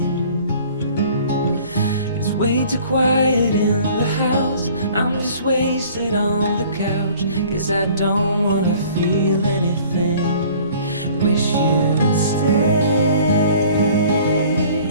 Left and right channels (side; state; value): both; inverted; correlation -0.51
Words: It's way too quiet in the house. I'm just wasted on the couch, 'cause I don't wanna feel anything. Wish you'd stay